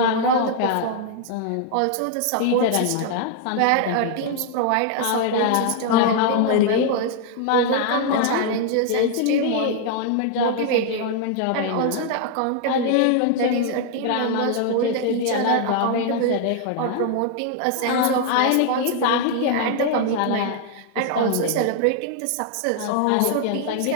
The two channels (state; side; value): different; both; correlation 0.00